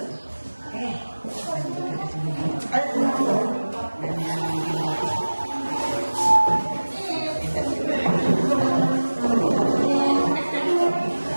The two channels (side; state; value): both; inverted; correlation -1.00